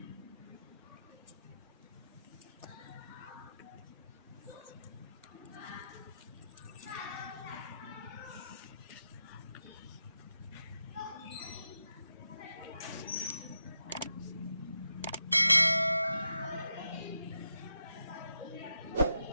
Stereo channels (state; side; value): inverted; both; correlation -0.87